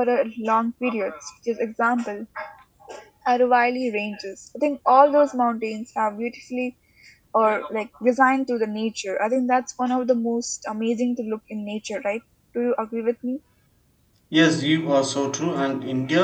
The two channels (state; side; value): identical; both; correlation 1.00